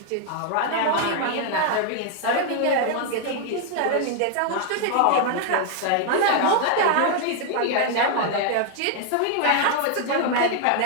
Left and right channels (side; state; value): both; different; correlation 0.00